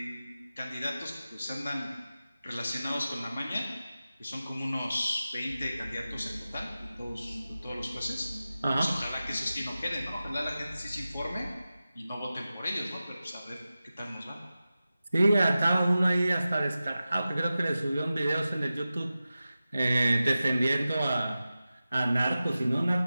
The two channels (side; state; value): both; inverted; correlation -0.94